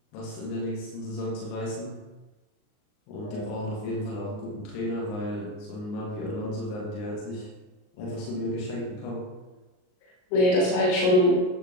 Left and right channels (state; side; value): late; right; 38 ms